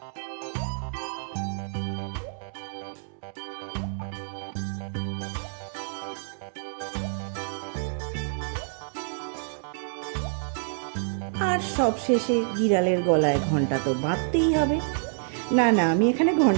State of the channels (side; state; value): left; silent; digital silence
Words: আর সবশেষে বিড়ালের গলায় ঘন্টা তো বাঁধতেই হবে। না না, আমি এখানে